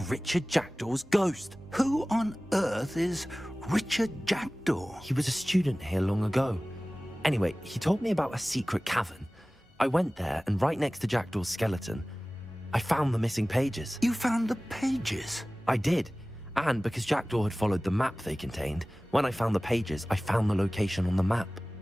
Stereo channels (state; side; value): normal; both; correlation 0.98